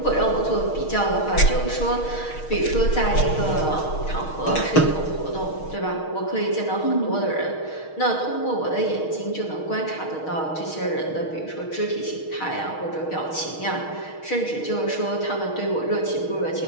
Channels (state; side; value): late; right; 6.4 ms